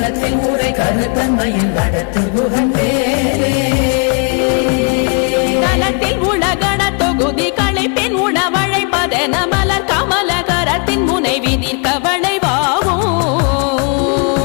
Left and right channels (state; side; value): quieter; right; 36.9 dB